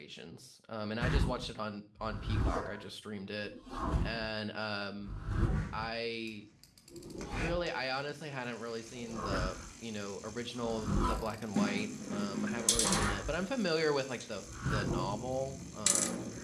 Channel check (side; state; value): both; identical; correlation 1.00